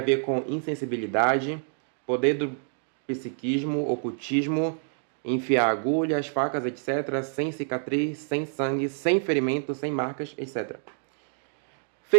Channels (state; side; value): silent; left; digital silence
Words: ver com insensibilidade, poder do psiquismo, ocultismo, enfiar agulhas, facas, etc., sem cicatriz, sem sangue, sem ferimento, sem marcas, etc.